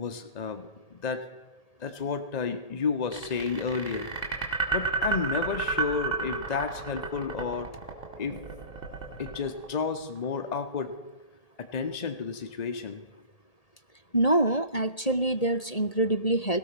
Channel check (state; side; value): late; right; 1.8 ms